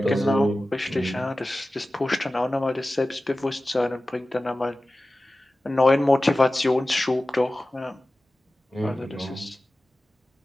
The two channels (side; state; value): both; normal; correlation 0.96